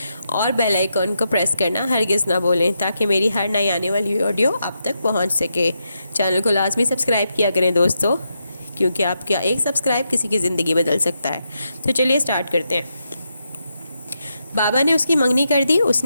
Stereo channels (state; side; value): inverted; both; correlation -0.84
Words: اور بیل آئیکن کو پریس کرنا ہرگز نہ بولیں تاکہ میری ہر نئی آنے والی آڈیو آپ تک پہنچ سکے۔ چینل کو لازمی سبسکرائب کیا کریں دوستوں، کیونکہ آپ کا ایک سبسکرائب کسی کی زندگی بدل سکتا ہے۔ تو چلیے سٹارٹ کرتے ہیں۔ بابا نے اس کی منگنی کر دی، اس